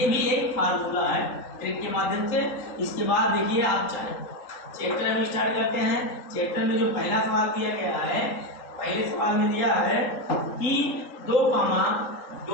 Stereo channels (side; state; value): right; late; 3.8 ms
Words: भी एक फार्मूला है ट्रिक के माध्यम से। इसके बाद देखिए आप चाहे चैप्टर में स्टार्ट करते हैं। चैप्टर में जो पहला सवाल दिया गया है, पहले सवाल में दिया है कि 2, 7,